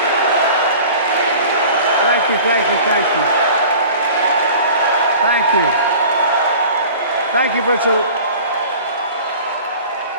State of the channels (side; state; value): both; inverted; correlation -0.42